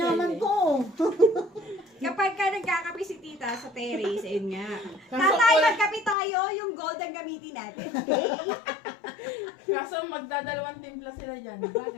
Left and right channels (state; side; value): drops out; right; at 6.2 s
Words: niya. ko. Kapag ka nagkakape si tita sa terrace, ayun nga. Kaso Tatay, wala- magkape tayo, yung gold ang gamitin natin. Kaso magdadalawang timpla sila dyan.